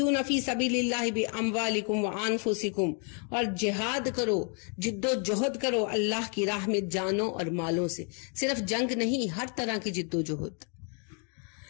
فی سبیل اللہ باموالکم وانفسکم، اور جہاد کرو، جد و جہد کرو اللہ کی راہ میں جانوں اور مالوں سے، صرف جنگ نہیں، ہر طرح کی جد و جہد۔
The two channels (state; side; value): quieter; right; 38.9 dB